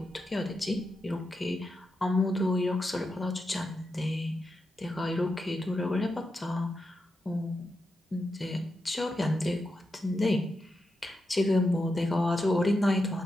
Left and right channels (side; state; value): both; normal; correlation 0.87